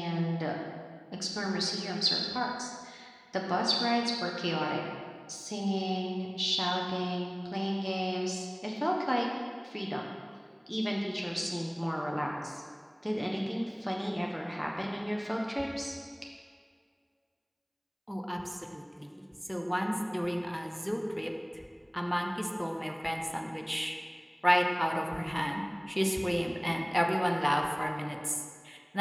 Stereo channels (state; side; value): identical; both; correlation 1.00